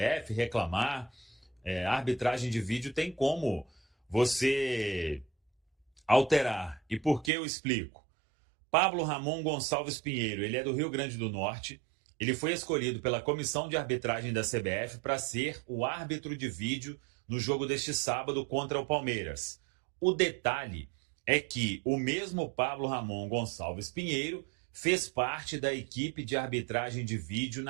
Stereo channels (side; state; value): left; drops out; at 7.3 s